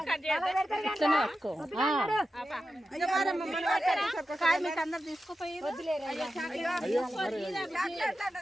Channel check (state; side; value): normal; both; correlation 0.91